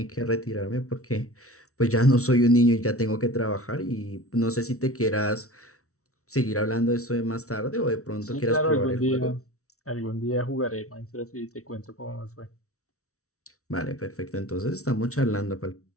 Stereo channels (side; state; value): right; late; 0.64 ms